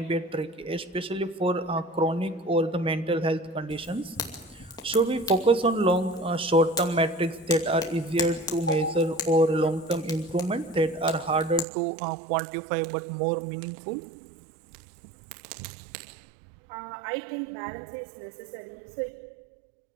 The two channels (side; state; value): left; drops out; at 11.7 s